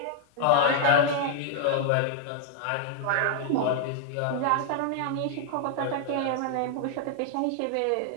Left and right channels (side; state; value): both; different; correlation 0.00